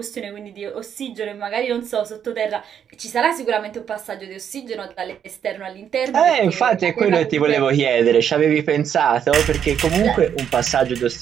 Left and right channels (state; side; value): quieter; left; 8.5 dB